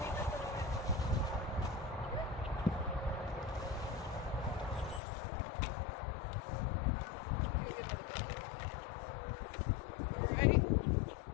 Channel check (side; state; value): right; drops out; at 5.0 s